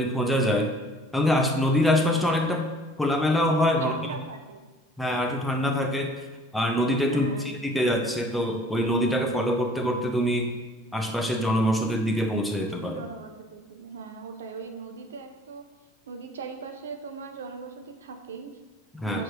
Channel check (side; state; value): both; normal; correlation 0.53